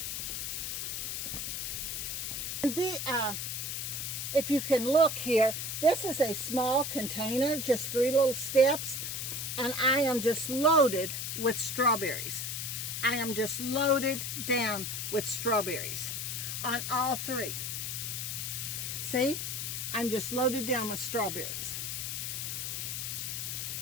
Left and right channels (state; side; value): noise; left; hiss, 3 dB below the sound